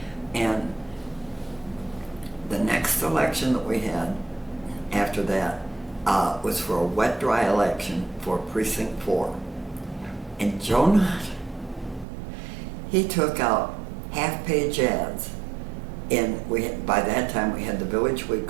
And the next election that we had after that was for a wet-dry election for Precinct 4. And Joe Nutt, he took out half-page ads, and by that time we had the Village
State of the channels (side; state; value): left; drops out; at 12.1 s